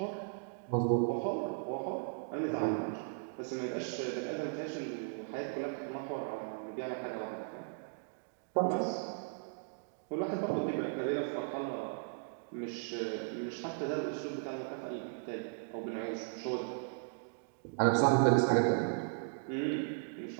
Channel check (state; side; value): silent; left; digital silence